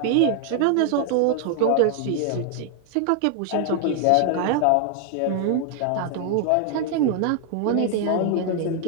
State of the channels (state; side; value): different; both; correlation 0.00